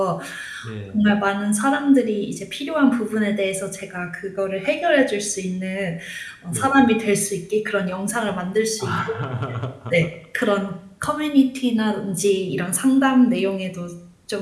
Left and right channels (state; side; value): identical; both; correlation 1.00